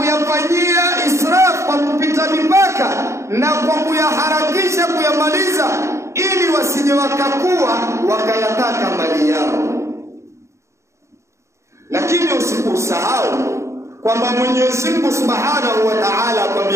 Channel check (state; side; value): late; left; 0.14 ms